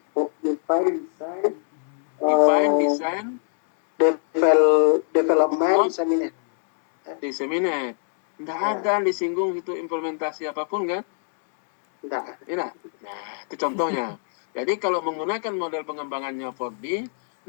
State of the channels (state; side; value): silent; right; digital silence